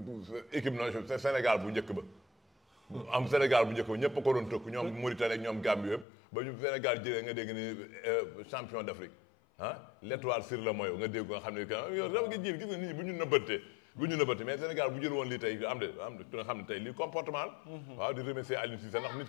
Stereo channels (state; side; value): drops out; right; at 6.1 s